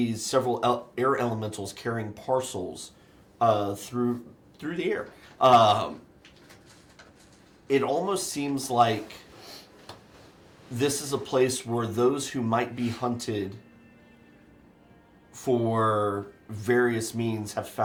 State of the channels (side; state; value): both; identical; correlation 1.00